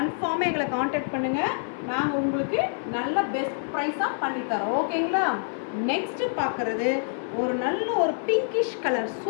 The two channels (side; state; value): right; silent; 55 dB below the other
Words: எங்களை காண்டாக்ட் பண்ணுங்கள். நாங்கள் உங்களுக்கு நல்ல பெஸ்ட் ப்ரைஸாக பண்ணித்தரோம். ஓகேங்களா? நெக்ஸ்ட்டு பார்க்குறது ஒரு நல்ல ஒரு பிங்கிஷ் கலர்